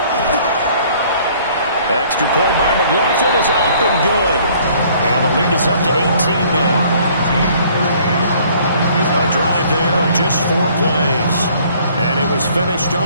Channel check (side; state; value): both; inverted; correlation -0.58